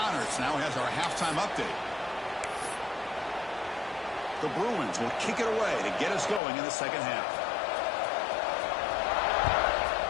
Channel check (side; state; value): right; drops out; at 6.4 s